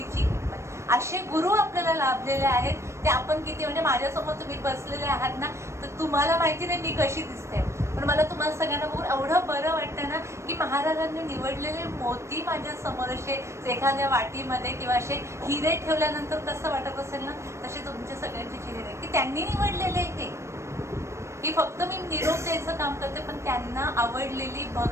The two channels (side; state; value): left; late; 0.13 ms